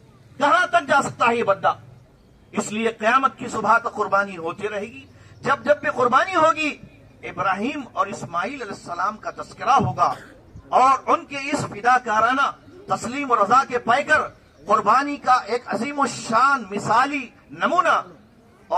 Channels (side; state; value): both; identical; correlation 1.00